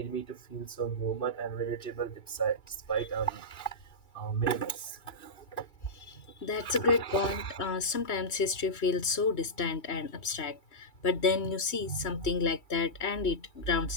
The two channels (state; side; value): late; right; 2.9 ms